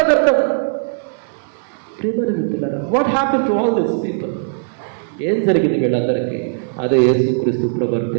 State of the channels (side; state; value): left; silent; 58 dB below the other